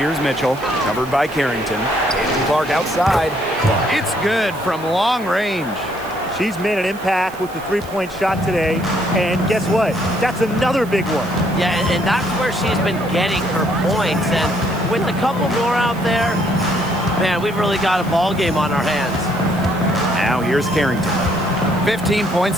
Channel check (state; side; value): noise; right; hiss, 20 dB below the sound